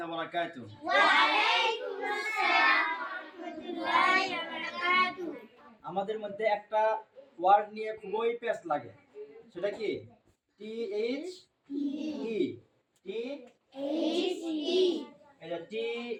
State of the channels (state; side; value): identical; both; correlation 1.00